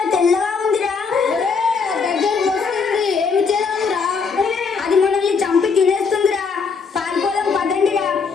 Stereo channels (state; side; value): quieter; right; 5.3 dB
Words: తెల్లగా ఉందిరా. దగ్గరకు వస్తుంది, ఏమి చేద్దాంరా, అది మనల్ని చంపి తినేస్తుందిరా. పారిపోదాం పదండిరా,